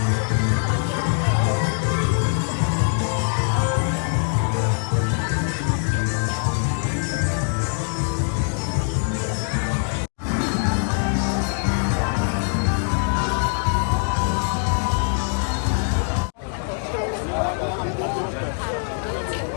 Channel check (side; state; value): right; silent; 64 dB below the other